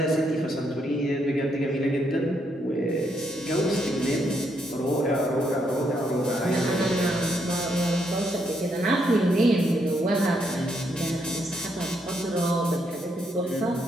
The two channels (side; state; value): both; normal; correlation 0.76